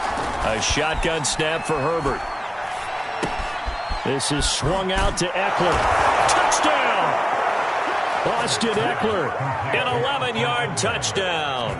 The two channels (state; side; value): identical; both; correlation 1.00